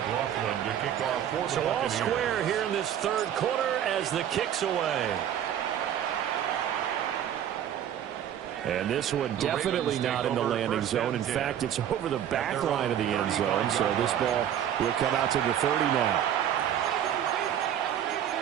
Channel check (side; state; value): left; quieter; 10.1 dB